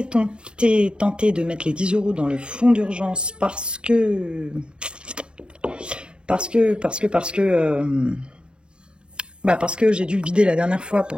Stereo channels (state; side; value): late; left; 0.052 ms